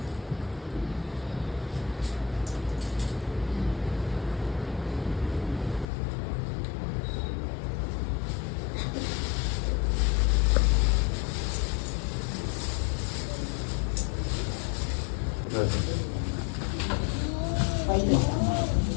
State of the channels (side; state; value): right; drops out; at 5.9 s